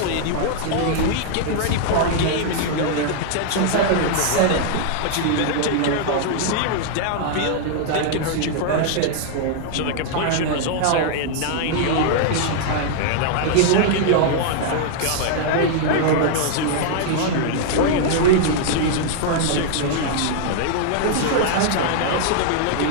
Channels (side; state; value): both; different; correlation -0.01